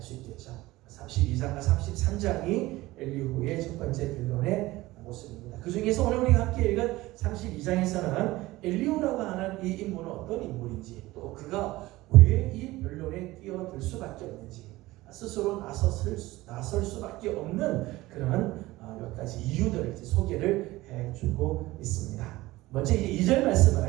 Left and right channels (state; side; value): quieter; left; 18.6 dB